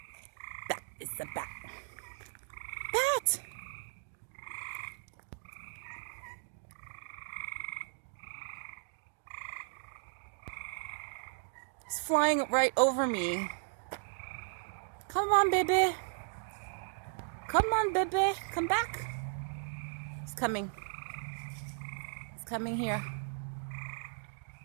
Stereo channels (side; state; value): left; silent; digital silence